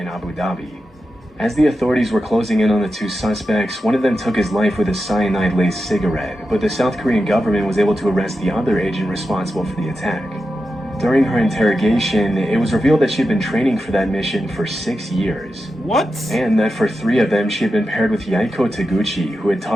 Abu Dhabi. As the authorities were closing in on the 2 suspects, one of them took his life with a cyanide-laced cigarette, but the South Korean government was able to arrest the other agent responsible for the attack. During her interrogation, it was revealed that she had been training for that mission for 6 years. What? And that for 3 of them, she had been paired with Yaiko Taguchi, who had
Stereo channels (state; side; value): normal; both; correlation 0.90